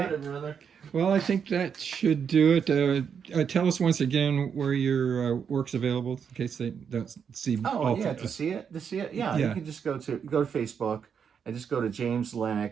Got it, brother. Well, I think that should do it. Tell us once again where your work's available in case they don't see. Oh, yeah, to see it. Yeah, you can just go to Facebook and just go to James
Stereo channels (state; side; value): quieter; left; 7.1 dB